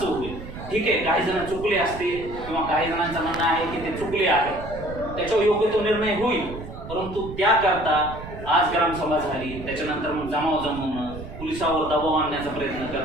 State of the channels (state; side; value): noise; right; rumble, 11 dB below the sound